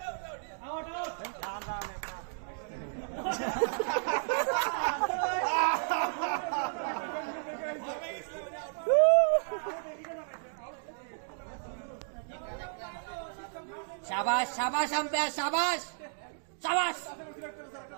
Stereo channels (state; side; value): silent; left; digital silence